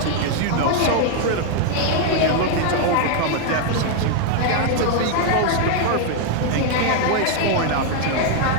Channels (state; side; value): different; both; correlation 0.00